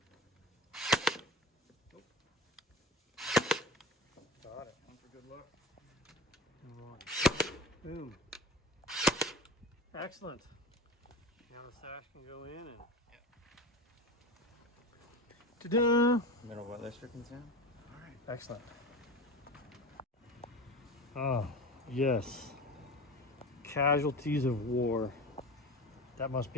Got it. One for good luck. Boom. Excellent. Now the sash can go in and. Ta-da! Middle weatherstripping sound. Excellent. Oh, yes. Casualties of war. That must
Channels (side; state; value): both; normal; correlation 0.31